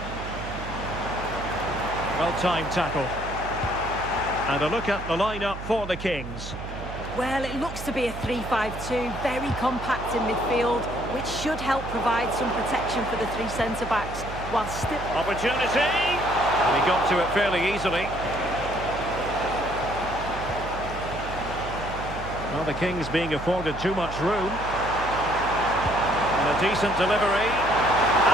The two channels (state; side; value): noise; right; hum, 10 dB below the sound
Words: Well-timed tackle. And a look at the lineup for the Kings. Well, it looks to be a 3-5-2, very compact in midfield, which should help provide some protection for the three centre-backs, while still... Opportunity! And he got to it fairly easily. Well, the Kings being afforded too much room. And a decent delivery.